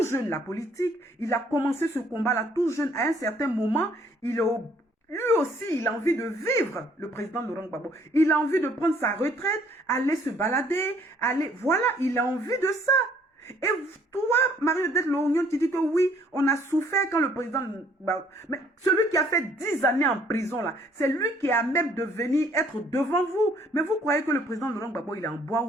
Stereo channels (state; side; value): normal; both; correlation 0.62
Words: jeune la politique, il a commencé ce combat-là tout jeune. À un certain moment, lui aussi, il a envie de vivre, le président Laurent Gbagbo. Il a envie de prendre sa retraite, aller se balader, voilà, il a envie de ça. Et toi, Marie-Odette Lorgnon, tu dis que oui, on a souffert quand le président... Mais celui qui a fait 10 années en prison, là, c'est lui qui a même de venir être devant vous. Mais vous croyez que le président Laurent Gbagbo, il est en bois